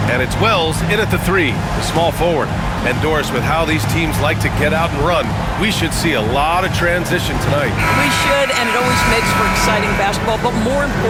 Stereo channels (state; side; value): identical; both; correlation 1.00